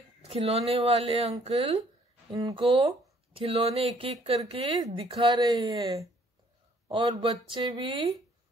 खिलौने वाले अंकल इनको खिलौने एक एक करके दिखा रहे हैं और बच्चे भी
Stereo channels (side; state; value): both; normal; correlation 0.62